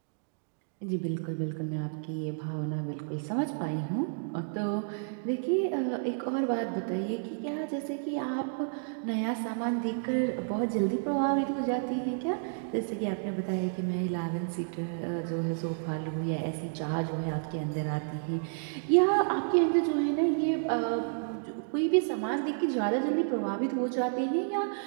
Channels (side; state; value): left; silent; digital silence